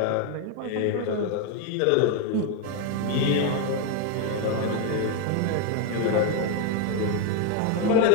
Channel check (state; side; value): different; both; correlation 0.01